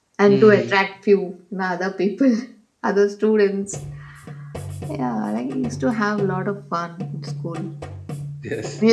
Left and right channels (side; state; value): both; identical; correlation 1.00